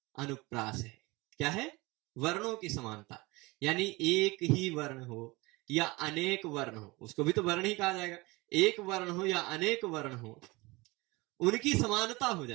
अनुप्रास है। क्या है? वर्णों की समानता, यानी एक ही वर्ण हो या अनेक वर्ण हो, उसको भी तो वर्ण ही कहा जाएगा। एक वर्ण हो या अनेक वर्ण हो, उनकी समानता हो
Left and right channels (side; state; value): left; quieter; 23.2 dB